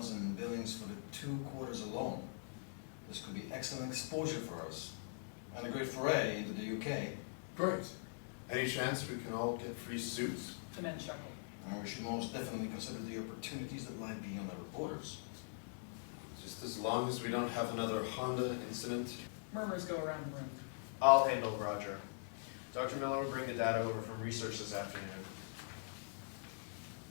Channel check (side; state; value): right; silent; digital silence